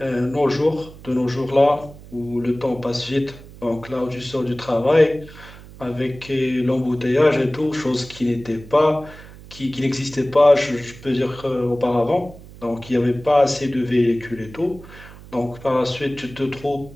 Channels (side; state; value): right; noise; hum, 18 dB below the sound